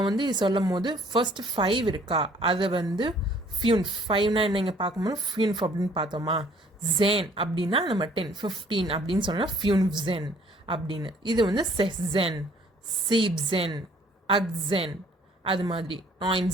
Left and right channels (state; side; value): normal; both; correlation 0.58